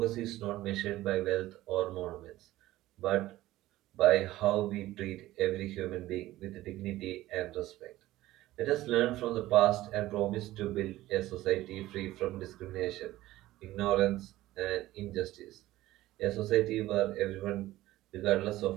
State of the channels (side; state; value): left; quieter; 16.1 dB